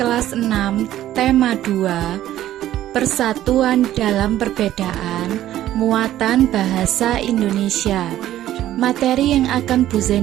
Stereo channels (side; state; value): left; quieter; 13.1 dB